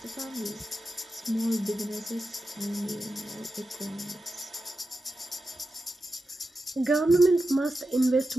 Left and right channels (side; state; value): both; normal; correlation 0.90